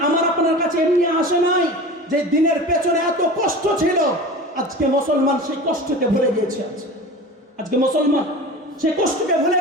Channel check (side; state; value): both; normal; correlation 0.34